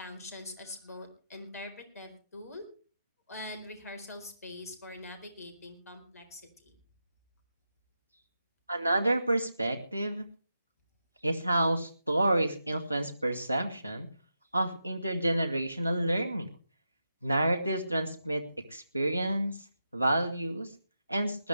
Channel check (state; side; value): inverted; both; correlation -0.87